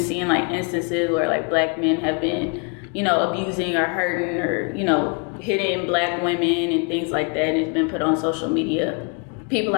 like instances where like black men have been, you know, abusing or hurting or, you know, hitting black women and things like that, and it's been put on social media. People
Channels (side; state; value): right; quieter; 36.4 dB